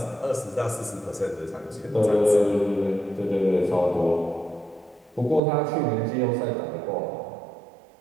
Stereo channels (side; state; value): left; drops out; at 5.4 s